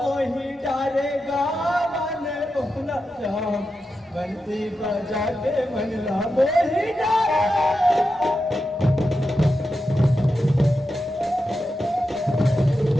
डारेगा मन मोहना श्याम बंसी बजा के मनला मोही डारे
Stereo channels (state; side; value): normal; both; correlation 0.89